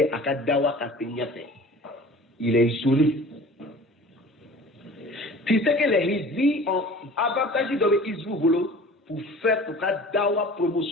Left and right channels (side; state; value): both; normal; correlation 0.43